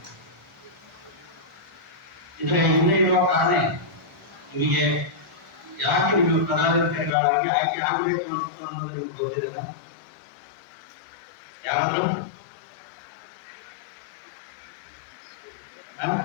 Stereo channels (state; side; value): drops out; right; at 7.2 s